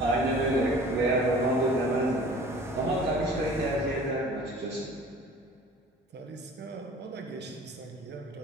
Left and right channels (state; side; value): normal; both; correlation 0.46